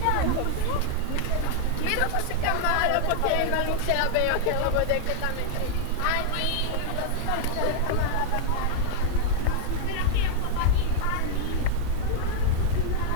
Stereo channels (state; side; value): different; both; correlation 0.00